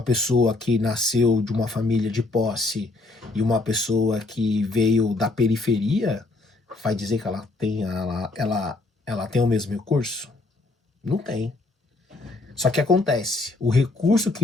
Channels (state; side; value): quieter; right; 3.2 dB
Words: pessoa que nasceu de uma família de posse e uma pessoa que veio da periferia, vai dizer que ela tem o mesmo recurso? Não tem. Só que acontece, o recurso